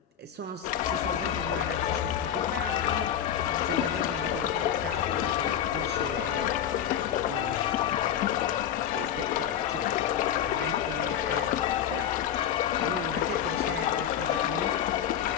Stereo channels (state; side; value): quieter; right; 9.6 dB